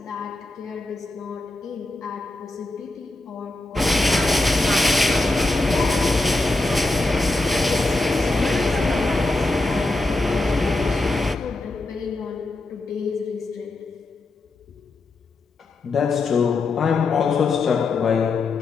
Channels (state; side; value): quieter; right; 3.2 dB